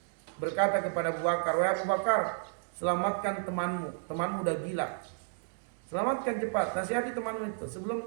berkata kepada Abu Bakar, "Wahai Abu Bakar, selamatkan temanmu udah gila. Selamatkan cepat, nasihati temanmu itu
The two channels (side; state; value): left; silent; digital silence